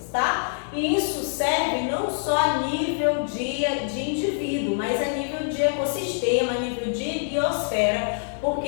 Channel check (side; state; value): right; silent; digital silence